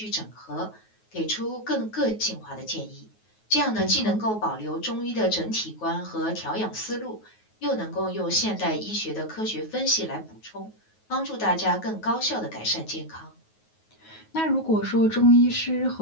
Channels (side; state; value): right; late; 9.4 ms